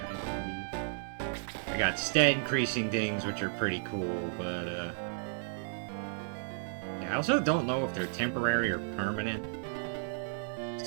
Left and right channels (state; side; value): silent; left; digital silence